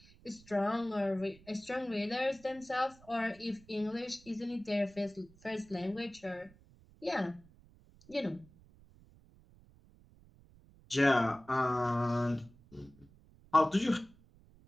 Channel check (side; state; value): right; noise; rumble, 26 dB below the sound